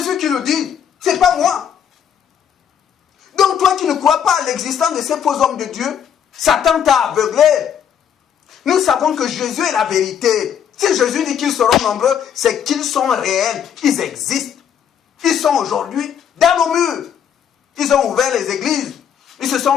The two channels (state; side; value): quieter; right; 8.5 dB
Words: qui le dit. C'est pas moi. Donc toi qui ne crois pas à l'existence de ces faux hommes de Dieu, Satan t'a aveuglé. Nous savons que Jésus est la vérité. Si Jésus dit qu'ils seront nombreux, c'est qu'ils sont réels. Ils existent. Ils sont aujourd'hui dans nos murs. Ils ont ouvert les églises. Ils se sont